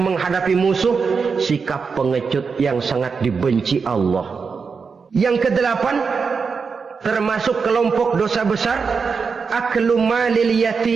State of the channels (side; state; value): left; quieter; 5.3 dB